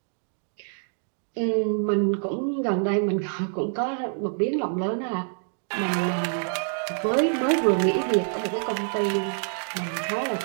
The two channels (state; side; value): silent; left; digital silence